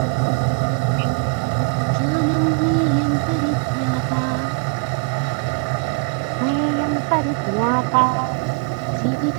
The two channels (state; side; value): quieter; left; 36.8 dB